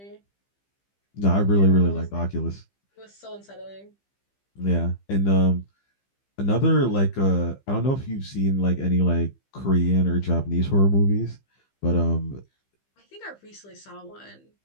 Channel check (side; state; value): right; late; 15 ms